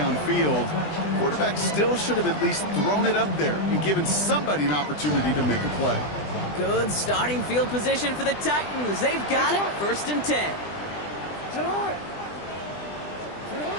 quarterback still should have at least thrown it up there and given somebody an opportunity to make a play. Good starting field position for the Titans. They've got it. 1st and 10.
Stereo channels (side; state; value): right; late; 20 ms